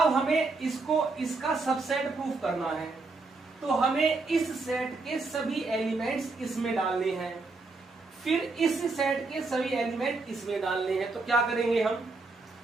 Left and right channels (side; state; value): left; quieter; 3.7 dB